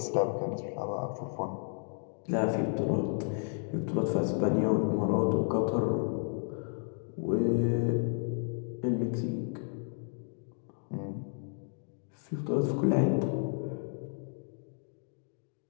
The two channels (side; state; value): right; silent; 56 dB below the other